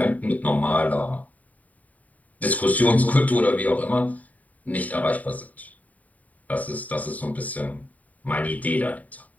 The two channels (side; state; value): right; late; 0.072 ms